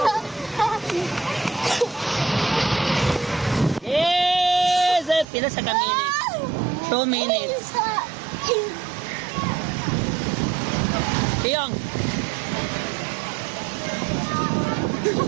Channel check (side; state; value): left; drops out; at 5.2 s